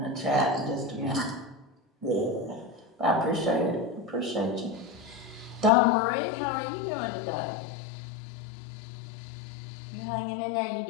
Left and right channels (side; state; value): right; drops out; at 5.7 s